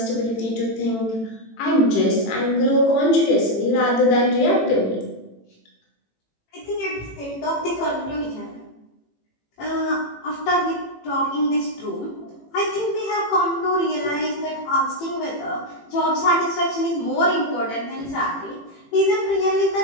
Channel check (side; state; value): right; late; 18 ms